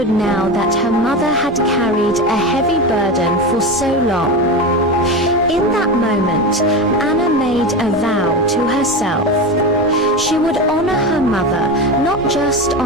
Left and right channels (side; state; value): both; normal; correlation 0.22